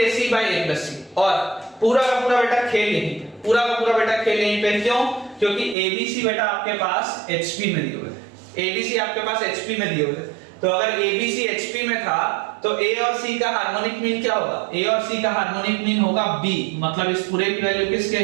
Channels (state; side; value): drops out; left; at 5.8 s